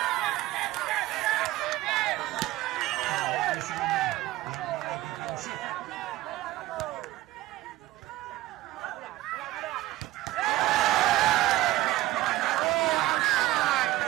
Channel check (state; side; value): quieter; left; 16.7 dB